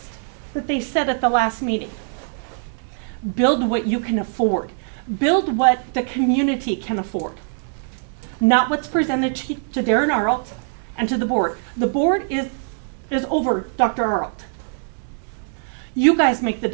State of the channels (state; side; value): silent; left; 64 dB below the other